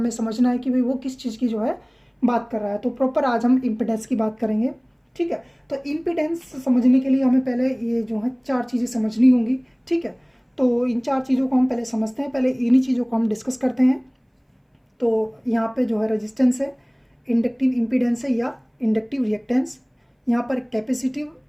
समझना है कि भाई वो किस चीज़ की जो है बात कर रहा है। तो प्रॉपर आज हम इम्पीडेंस की बात करेंगे। ठीक है, तो इम्पीडेंस समझने के लिए हमें पहले ये जो है चार चीज़ें समझनी होंगी। ठीक है, तो इन चार चीज़ों को हम पहले समझते हैं, पहले इन्हीं चीज़ों को हम डिस्कस करते हैं। तो यहाँ पे जो है रेजिस्टेंस है, इंडक्टिव इम्पीडेंस है या इंडक्टिव रिएक्टेंस, यहाँ पर कैपेसिटिव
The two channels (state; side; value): identical; both; correlation 1.00